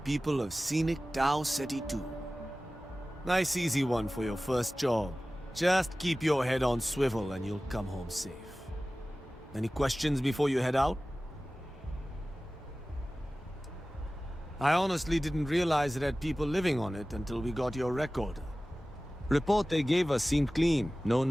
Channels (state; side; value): normal; both; correlation 0.97